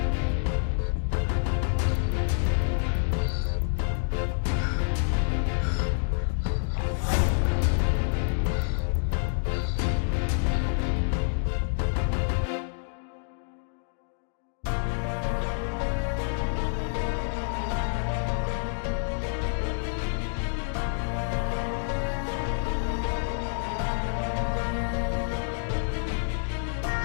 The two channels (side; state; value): right; silent; digital silence